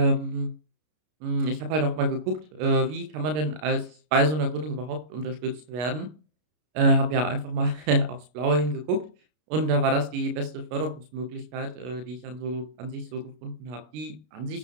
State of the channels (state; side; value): late; left; 33 ms